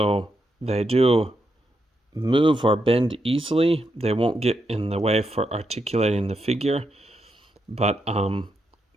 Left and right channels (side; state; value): both; normal; correlation 0.82